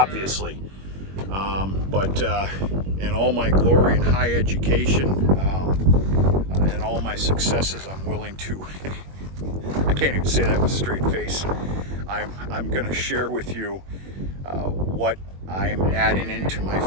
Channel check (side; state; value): left; late; 21 ms